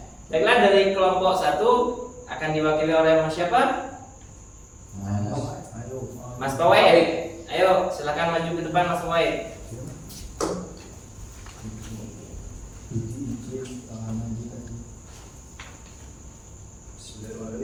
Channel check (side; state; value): both; identical; correlation 1.00